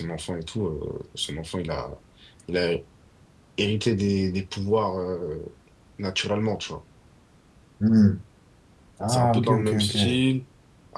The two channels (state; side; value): identical; both; correlation 1.00